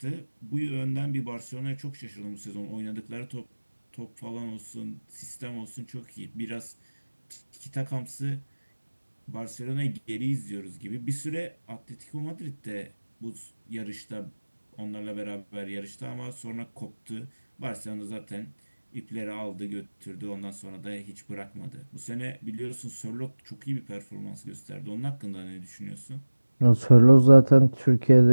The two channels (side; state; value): both; inverted; correlation -1.00